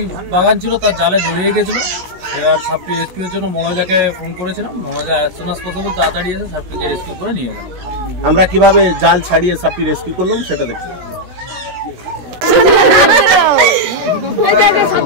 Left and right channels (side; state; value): left; late; 16 ms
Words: বাগান ছিল, তার জালে জড়িয়ে গেছিল। এবার সাপটি রেস্কিউর জন্য মনোজাকে ফোন করেছিলাম। মনোজা অ্যাজ সুন অ্যাজ পসিবল তাড়াতাড়ি এসে সাপটিকে রেস্কিউ করে নিয়ে গেল। আমরা কিভাবে জাল ছাড়িয়ে সাপটি রেস্কিউ করলাম সেটা দেখতে।